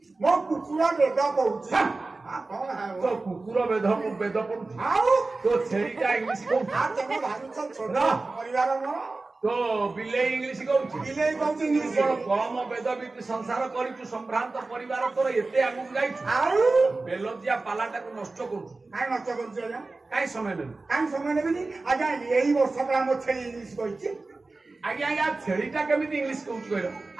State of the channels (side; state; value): left; quieter; 3.5 dB